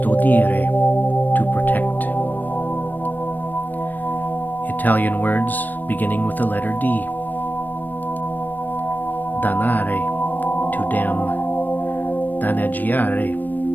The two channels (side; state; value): right; late; 0.088 ms